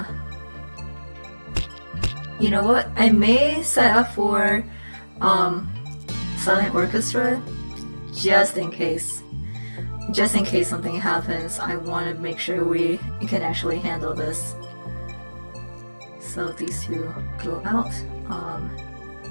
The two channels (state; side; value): inverted; both; correlation -1.00